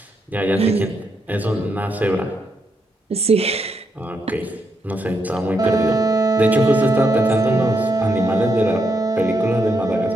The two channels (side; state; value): both; normal; correlation 0.80